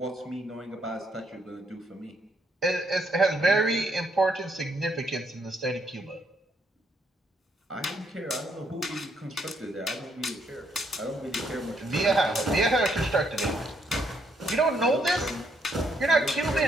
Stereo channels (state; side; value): normal; both; correlation 0.73